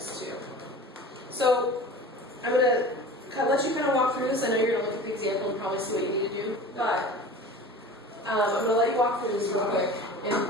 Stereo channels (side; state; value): both; normal; correlation 0.38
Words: 2. So I'm going to let you kind of walk through this. I know you're going to look at the example and probably see what you need to do, but I'm going to let you walk through this real quick and